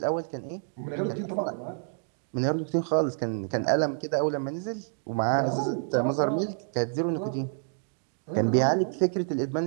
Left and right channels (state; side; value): silent; left; digital silence